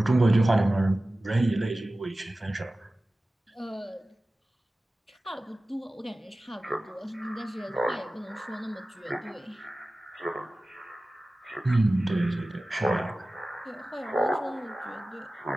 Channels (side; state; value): both; normal; correlation 0.96